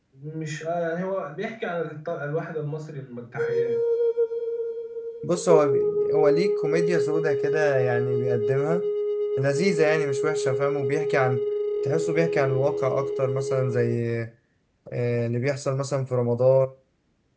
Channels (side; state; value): both; identical; correlation 1.00